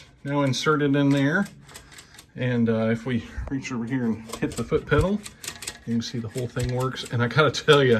now inserted in there. And if we reach over here and hit the foot pedal, you can see the whole thing works. And I gotta tell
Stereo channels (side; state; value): both; identical; correlation 1.00